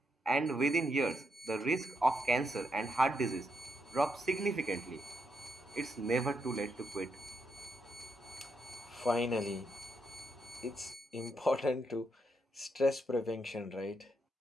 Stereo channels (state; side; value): normal; both; correlation 0.80